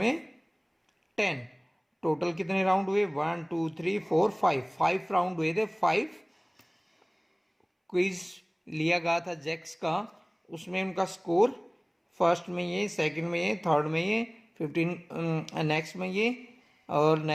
10। टोटल कितने राउंड हुए? 1 2 3 4 5 राउंड हुए थे। 5 क्विज लिया गया था जैक्स का, उसमें उनका स्कोर फर्स्ट में ये, सेकंड में ये, थर्ड में ये, 15 नेक्स्ट में ये और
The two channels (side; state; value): both; identical; correlation 1.00